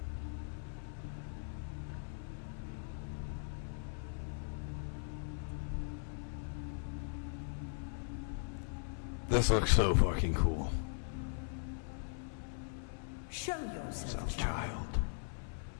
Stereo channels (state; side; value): silent; right; 52 dB below the other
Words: This looks so fucking cool. Show yourself, child.